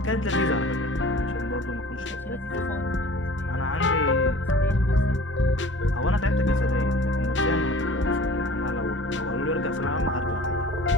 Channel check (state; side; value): normal; both; correlation 0.45